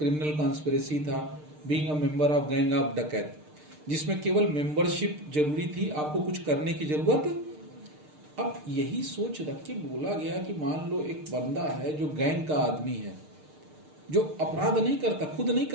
कॉन्स्पिरेसी था, being a member of gang of dacoit, जिसमें केवल मेंबरशिप जरूरी थी, आपको कुछ करने की जरूरत। अब यही सोच रख के बोला गया कि मान लो एक बंदा है जो गैंग का आदमी है, जो अपराध नहीं करता, खुद नहीं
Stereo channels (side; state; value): left; late; 6.6 ms